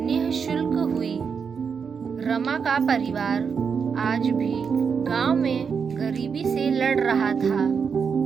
हुई। रमा का परिवार आज भी गांव में गरीबी से लड़ रहा था।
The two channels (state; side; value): quieter; left; 6.2 dB